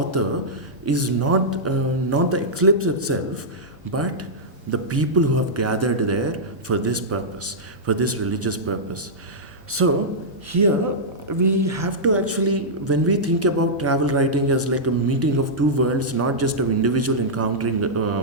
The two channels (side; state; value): both; normal; correlation -0.11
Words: is not the eclipse itself, but the people who have gathered there for this purpose, for this religious purpose. So here we have to actually, when we think about travel writing as like a meeting of two worlds, not just of individual encountering